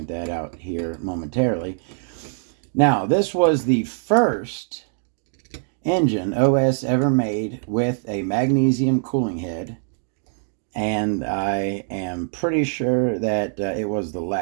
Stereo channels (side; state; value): left; silent; 63 dB below the other